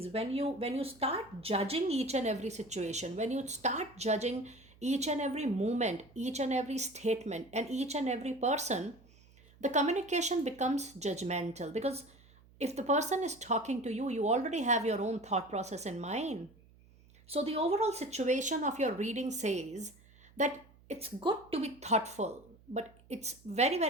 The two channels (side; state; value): right; noise; hum, 26 dB below the sound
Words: When you start judging each and every situation, when you start judging each and every movement, each and every statement, and each and every person, the communication becomes judgmental. Because if the person is talking to you, you already have your own thought process in mind. So, the overall situation of your reading says that it's good to be thoughtful, but it's very,